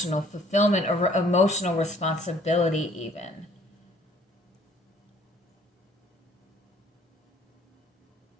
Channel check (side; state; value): both; normal; correlation 0.58